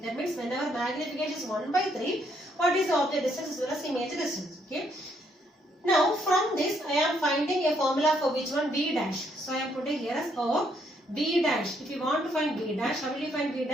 That means whenever magnification is 1 by 3, what is the object distance as well as image distance? Okay. Now from this I am finding a formula for which one? V dash. So I am putting here as O V dash. If you want to find V dash, how will you find V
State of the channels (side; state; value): both; normal; correlation 0.72